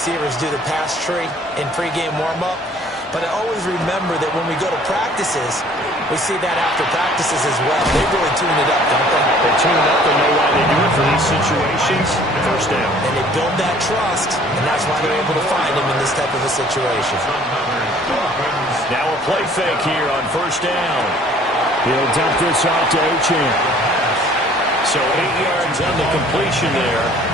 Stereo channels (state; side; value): normal; both; correlation 0.54